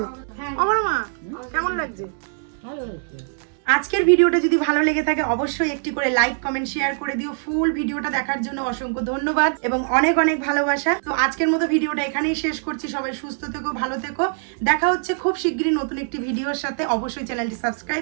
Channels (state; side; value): silent; left; digital silence